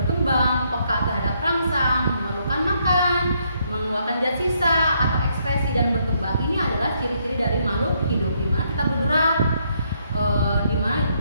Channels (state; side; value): inverted; both; correlation -0.73